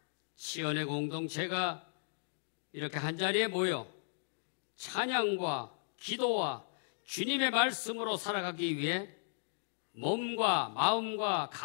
치연의 공동체가 이렇게 한자리에 모여 찬양과 기도와 주님의 말씀으로 살아가기 위해 몸과 마음과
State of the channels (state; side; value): silent; right; digital silence